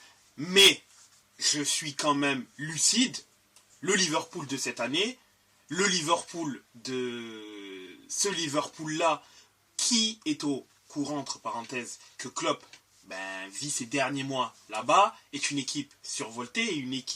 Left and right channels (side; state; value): both; identical; correlation 1.00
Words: Mais je suis quand même lucide. Le Liverpool de cette année, le Liverpool de ce Liverpool-là, qui est au courant, entre parenthèses, que Klopp vit ses derniers mois là-bas, est une équipe survoltée, une